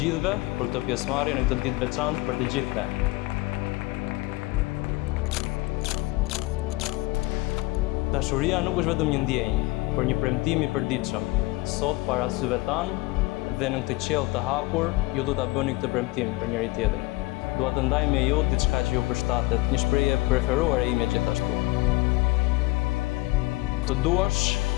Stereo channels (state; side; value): quieter; right; 21.6 dB